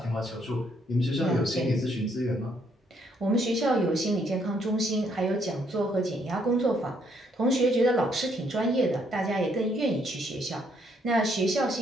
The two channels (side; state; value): both; normal; correlation 0.70